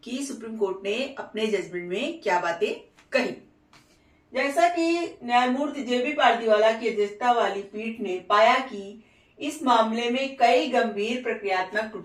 कि सुप्रीम कोर्ट ने अपने जजमेंट में क्या बातें कही। जैसा कि न्यायमूर्ति जेबी पारदीवाला की अध्यक्षता वाली पीठ ने पाया कि इस मामले में कई गंभीर प्रक्रियात्मक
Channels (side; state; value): both; identical; correlation 1.00